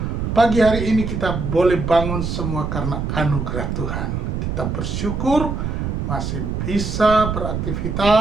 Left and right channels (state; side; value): noise; right; rumble, 2 dB below the sound